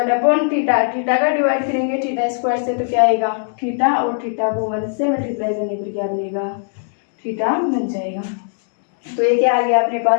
upon theta, theta का डिवाइड करेंगे थीटा स्क्वायर से तो क्या आएगा थीटा और थीटा को 1 से मल्टीप्लाई करने पर क्या बनेगा थीटा बन जाएगा। तो ये क्या आ गया अपने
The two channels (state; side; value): silent; right; digital silence